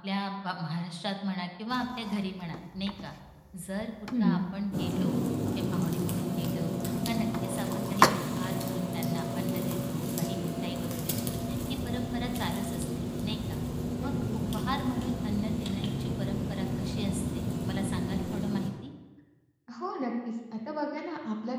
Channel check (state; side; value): identical; both; correlation 1.00